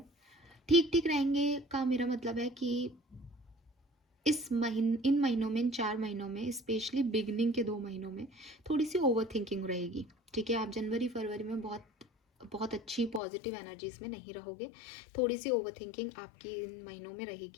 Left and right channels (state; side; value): drops out; right; at 13.2 s